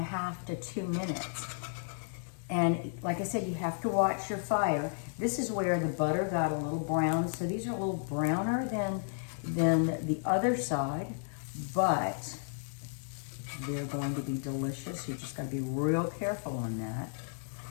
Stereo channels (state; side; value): silent; right; digital silence